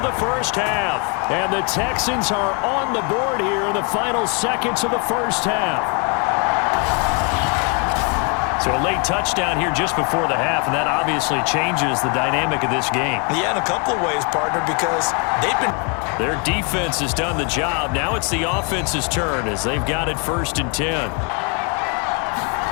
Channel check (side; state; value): right; quieter; 34.7 dB